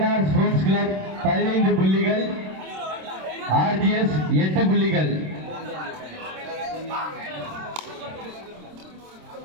ஸ்போர்ட்ஸ் கிளப் 15 புள்ளிகள், ஆர்ஜிஎஸ் 8 புள்ளிகள்.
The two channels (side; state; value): left; late; 27 ms